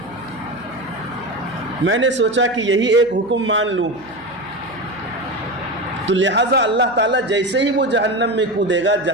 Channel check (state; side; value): noise; right; hum, 23 dB below the sound